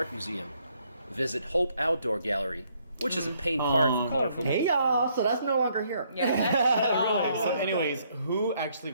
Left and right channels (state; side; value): inverted; both; correlation -0.69